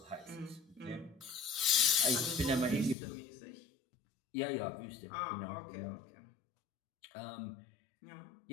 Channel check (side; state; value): right; drops out; at 3.0 s